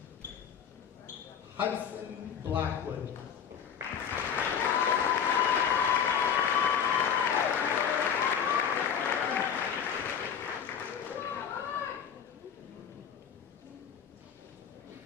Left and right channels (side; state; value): right; quieter; 7.9 dB